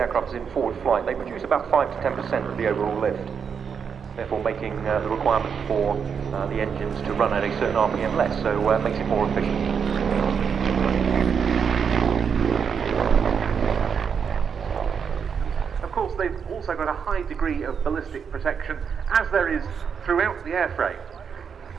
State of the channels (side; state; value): left; quieter; 6.7 dB